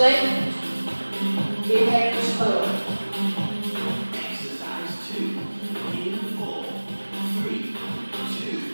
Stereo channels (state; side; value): inverted; both; correlation -1.00